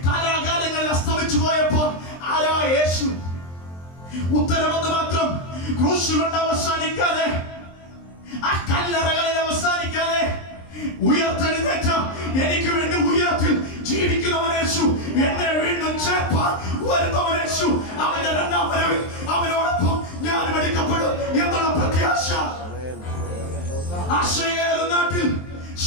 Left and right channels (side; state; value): right; late; 23 ms